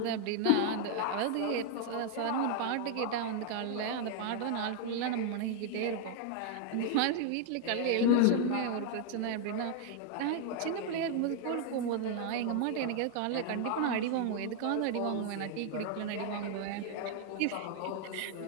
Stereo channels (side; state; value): both; different; correlation 0.00